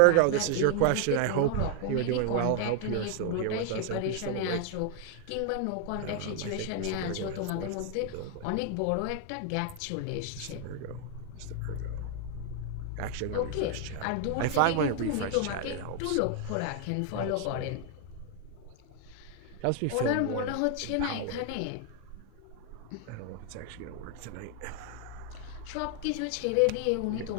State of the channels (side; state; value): both; different; correlation 0.00